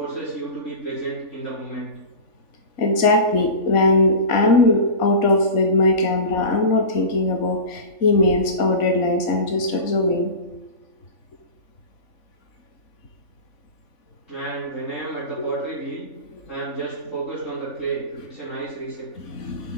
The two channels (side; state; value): right; late; 3.5 ms